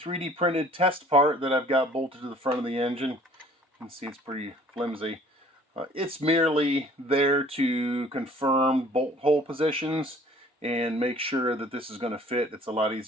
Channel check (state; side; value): normal; both; correlation 0.53